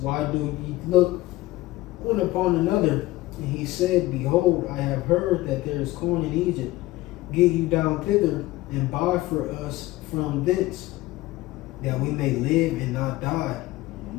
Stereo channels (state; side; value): quieter; right; 18.4 dB